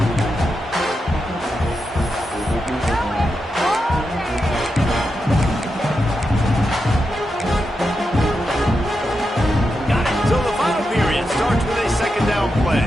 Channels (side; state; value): both; normal; correlation 0.87